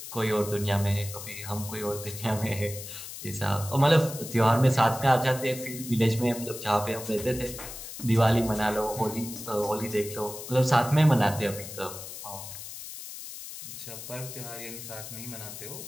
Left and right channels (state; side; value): noise; left; hiss, 11 dB below the sound